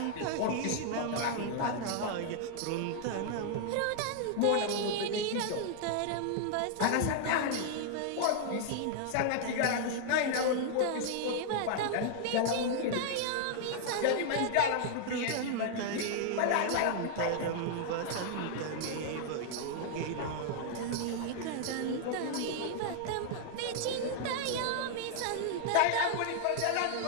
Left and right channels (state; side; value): different; both; correlation -0.01